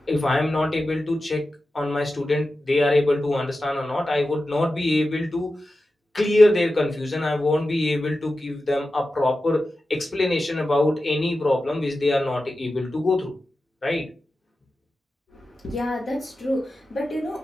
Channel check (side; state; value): both; normal; correlation 0.93